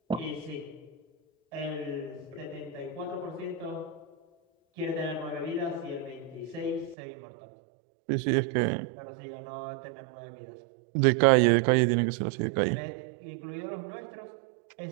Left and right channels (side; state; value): left; drops out; at 7.0 s